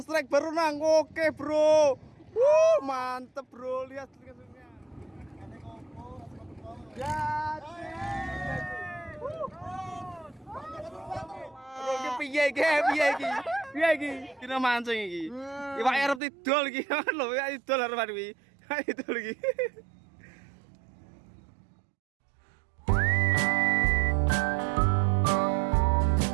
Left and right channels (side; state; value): left; drops out; at 16.2 s